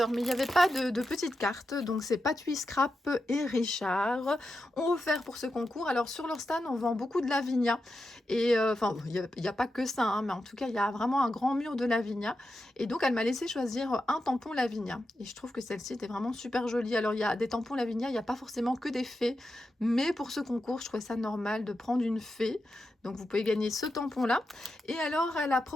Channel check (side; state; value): both; normal; correlation 0.88